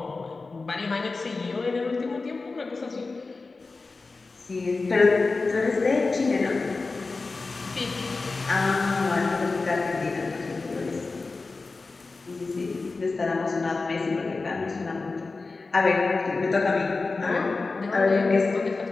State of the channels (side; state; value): right; quieter; 3.8 dB